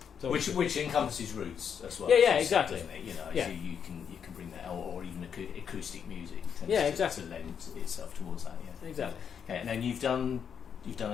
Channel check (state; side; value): quieter; right; 7.5 dB